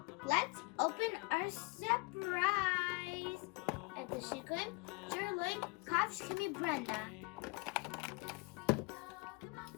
let's open our surprise at the branda.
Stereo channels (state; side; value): quieter; right; 27.4 dB